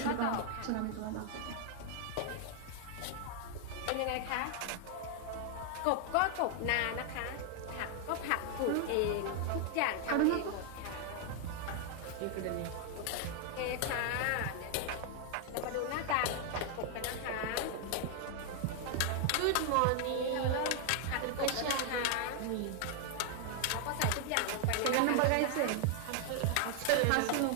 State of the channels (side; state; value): both; different; correlation 0.00